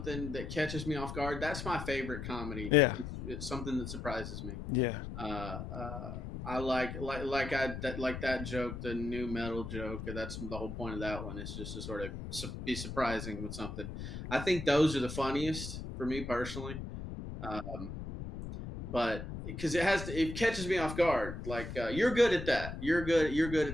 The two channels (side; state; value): left; noise; rumble, 8 dB below the sound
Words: that catches me off guard. That's my favorite comedy. Yeah, It's something that surprises me. yeah. I like that joke, the new metal joke. That's the whole point of that one. It's just to sort of be surprising with something. I think those are the funniest for me personally. Um, but because it catches me off guard. Like you're good at that. You're good